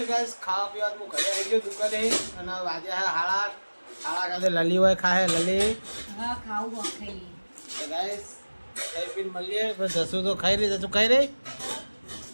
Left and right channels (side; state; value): both; inverted; correlation -1.00